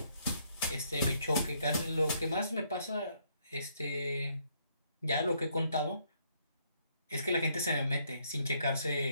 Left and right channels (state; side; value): inverted; both; correlation -0.71